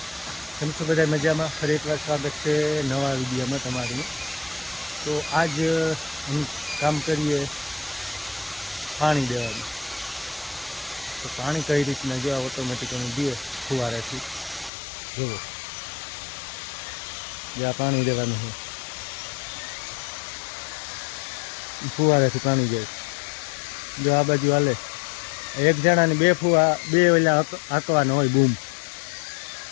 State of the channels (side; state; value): right; drops out; at 14.7 s